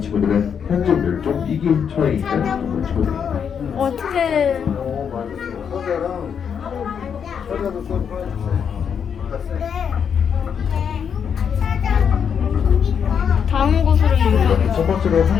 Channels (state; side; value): quieter; right; 7.4 dB